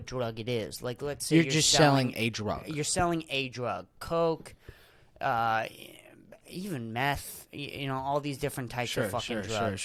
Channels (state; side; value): identical; both; correlation 1.00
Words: drug it is. Like, let's say you're just selling a drug. You're selling a drug, coke, even meth. All these different types of fucking drugs.